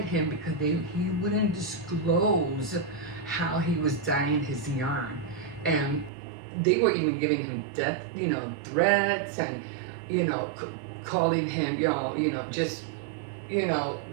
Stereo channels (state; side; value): drops out; left; at 6.1 s